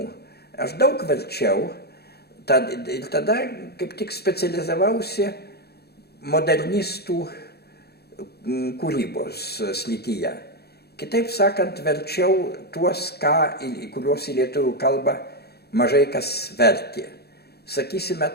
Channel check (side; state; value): right; late; 0.47 ms